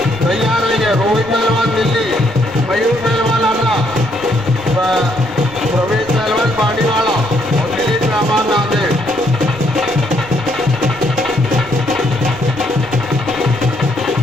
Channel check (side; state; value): both; normal; correlation 0.71